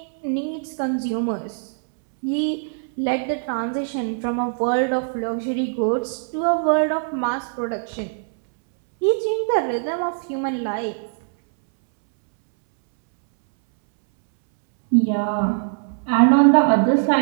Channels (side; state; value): left; silent; 64 dB below the other